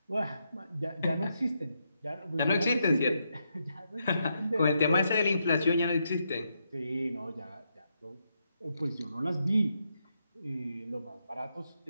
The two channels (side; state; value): both; inverted; correlation -0.81